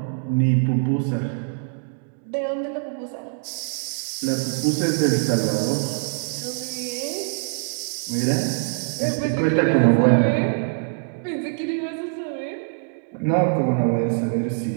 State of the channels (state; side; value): silent; left; 62 dB below the other